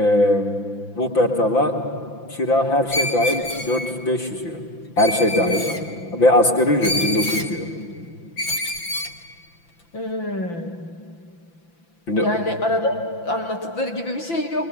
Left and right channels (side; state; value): right; late; 5.9 ms